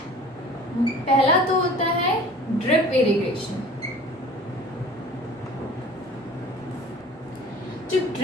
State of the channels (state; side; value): normal; both; correlation 0.44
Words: पहला तो होता है ड्रिप इरिगेशन। जो